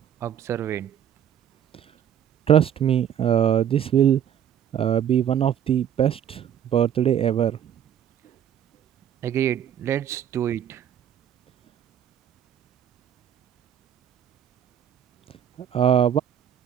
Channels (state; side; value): quieter; left; 9.5 dB